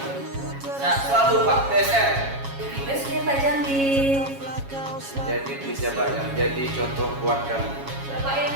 Sehat selalu Pak PSR. Best Pak Jamil. Jadi pejabat yang jadi contoh buat kami. Bapak yang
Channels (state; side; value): late; left; 7.3 ms